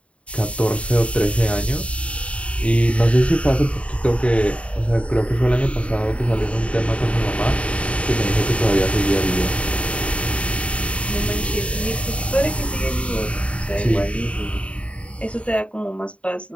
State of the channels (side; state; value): right; late; 0.063 ms